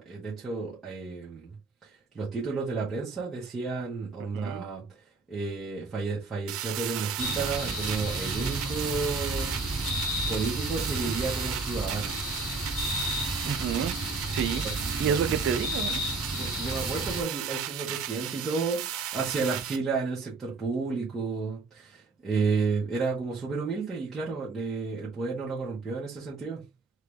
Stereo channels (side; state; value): left; quieter; 4.1 dB